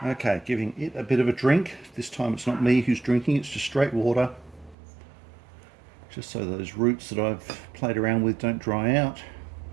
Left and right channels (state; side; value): drops out; left; at 4.8 s